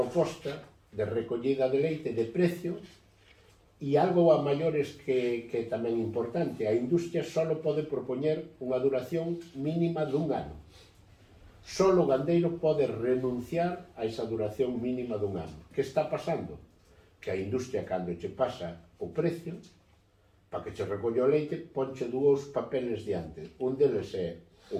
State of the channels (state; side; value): identical; both; correlation 1.00